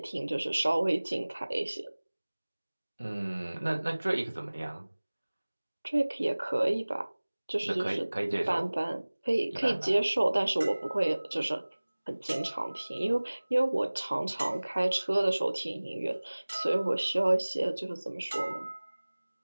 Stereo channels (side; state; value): both; inverted; correlation -1.00